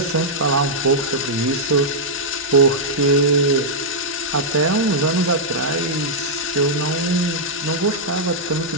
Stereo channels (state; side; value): normal; both; correlation -0.08